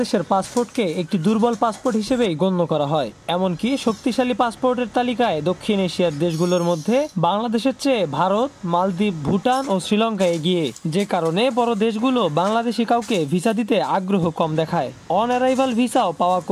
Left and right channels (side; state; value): both; identical; correlation 1.00